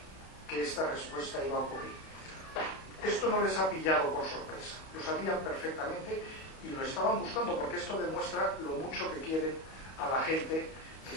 que esta respuesta iba a ocurrir. Esto no les ha pillado por sorpresa, lo sabían perfectamente y lo estaban buscando, porque esto demuestra lo mucho que quieren a la gente que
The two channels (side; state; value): right; late; 31 ms